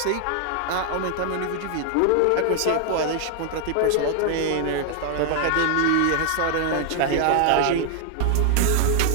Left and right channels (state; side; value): different; both; correlation 0.00